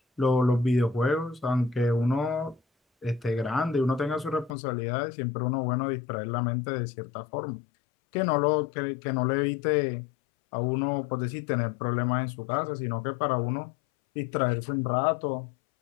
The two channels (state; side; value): drops out; right; at 4.5 s